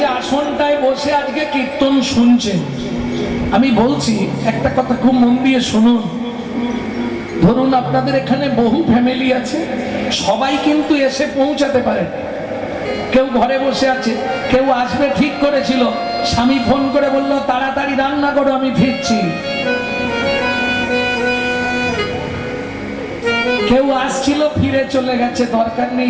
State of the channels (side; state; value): both; identical; correlation 1.00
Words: আসনটায় বসে আজকে কীর্তন শুনছেন, আমি বলছি একটা কথা খুব মন দিয়ে শুনুন। ধরুন আপনাদের এখানে বহু ফ্যামিলি আছে, সবাই কিন্তু এসে পৌঁছাতে পারে। কেউ ঘরে বসে আছে, কেউ আসবে ঠিক করেছিল, স্বামী ফোন করে বলল তাড়াতাড়ি রান্না করো আমি ফিরছি। কেউ আসছিল ফিরে চলে গেছে, দরকার নেই